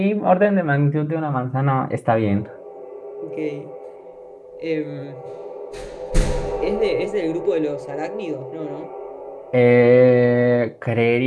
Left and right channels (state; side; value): identical; both; correlation 1.00